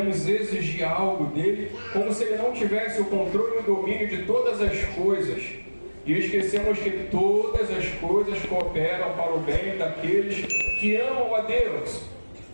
exigir algo dele, como se ele não tivesse o controle e o domínio de todas as coisas. E esquecemos que todas as coisas cooperam para o bem daqueles que amam a Deus.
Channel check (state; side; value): inverted; both; correlation -1.00